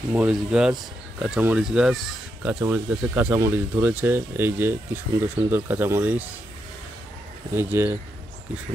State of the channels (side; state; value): both; normal; correlation 0.82